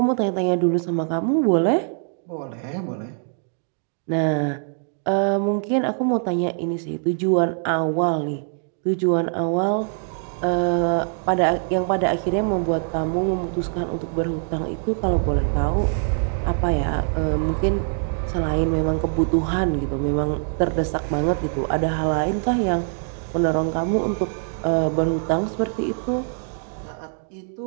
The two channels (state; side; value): silent; left; 63 dB below the other